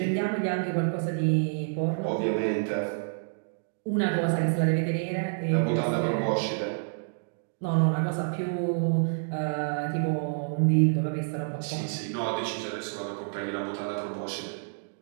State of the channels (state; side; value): silent; left; digital silence